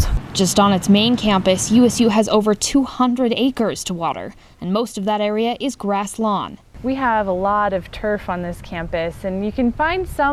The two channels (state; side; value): identical; both; correlation 1.00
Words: Just on its main campus, USU has over 200 acres to water, and most of that area is grass lawn. We have a lot of turf on this campus, and you can find